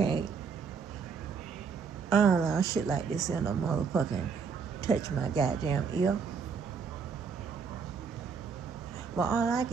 I don't allow shit like this in a motherfucking touch my goddamn ear. But all I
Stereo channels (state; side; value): quieter; left; 5.9 dB